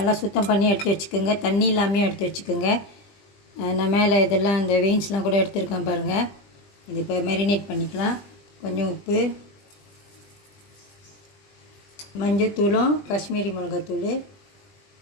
சுத்தம் பண்ணி எடுத்து வச்சுக்கோங்க. தண்ணி இல்லாமல் எடுத்து வச்சுக்கோங்க. நான் மேலே இதெல்லாம் இந்த வெயின்ஸ்லாம் கூட எடுத்துருக்கேன் பாருங்கள். இது இப்போ மேரினேட் பண்ணிக்கலாம். கொஞ்சம் உப்பு, மஞ்சத்தூளும் காஷ்மீரி மிளகாத்தூள்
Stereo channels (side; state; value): right; late; 20 ms